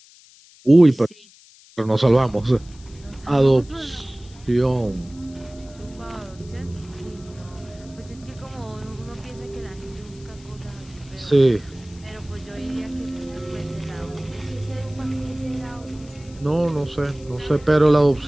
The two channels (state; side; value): noise; left; hiss, 25 dB below the sound